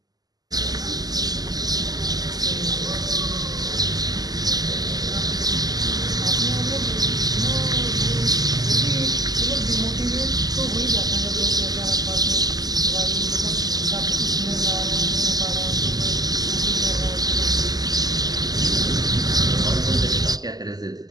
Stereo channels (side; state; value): left; late; 0.19 ms